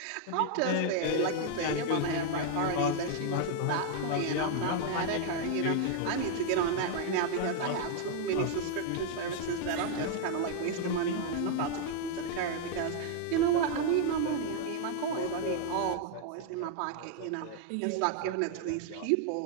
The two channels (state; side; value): different; both; correlation 0.00